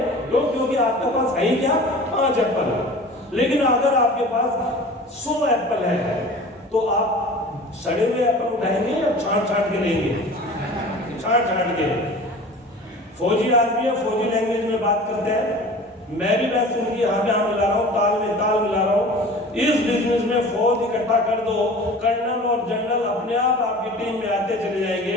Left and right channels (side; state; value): both; normal; correlation 0.40